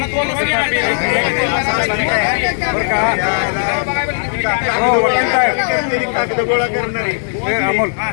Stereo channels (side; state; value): right; silent; digital silence